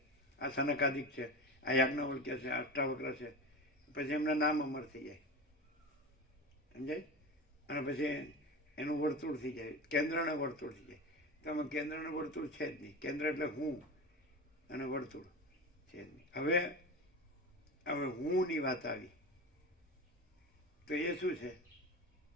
આ સનકાદિક છે, આ યાજ્ઞવલ્ક્ય છે, અષ્ટાવક્ર છે. પછી એમના નામ અમર થઈ જાય, સમજાય? અને પછી એનું વર્તુળ થઈ જાય, કેન્દ્રને વર્તુળ થઈ જાય. તો આમાં કેન્દ્રને વર્તુળ છે જ નહીં. કેન્દ્ર એટલે હું અને વર્તુળ છે જ નહીં. હવે હુંની વાત આવી તો એ શું છે?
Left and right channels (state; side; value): normal; both; correlation 0.27